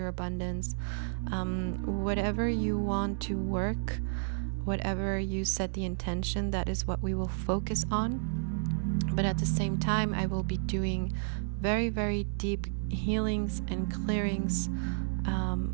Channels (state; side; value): silent; left; digital silence